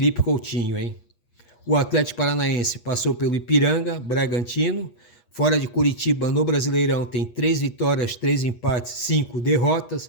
Coutinho, hein? O Atlético Paranaense passou pelo Ipiranga, Bragantino. Fora de Curitiba, no Brasileirão, tem 3 vitórias, 3 empates, 5 derrotas.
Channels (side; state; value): right; late; 8.4 ms